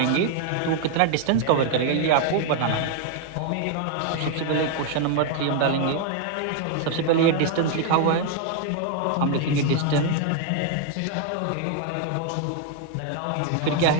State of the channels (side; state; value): both; different; correlation 0.00